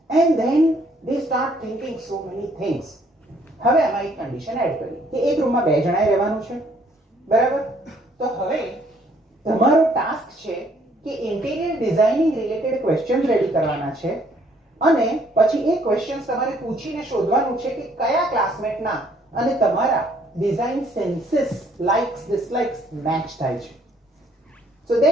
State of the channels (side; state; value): both; normal; correlation 0.64